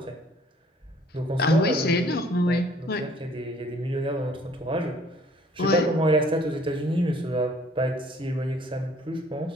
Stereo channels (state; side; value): normal; both; correlation 0.58